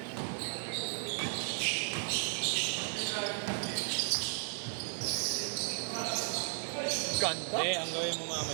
Ganda. Eh, ang gawin mo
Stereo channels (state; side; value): silent; left; 55 dB below the other